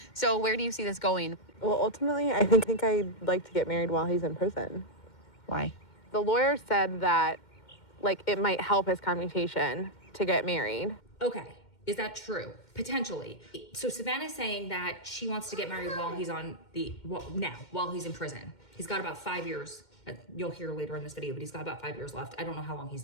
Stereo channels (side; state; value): right; late; 2.1 ms